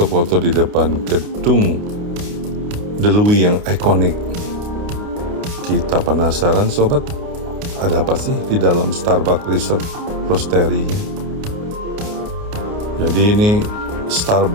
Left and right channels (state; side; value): late; left; 29 ms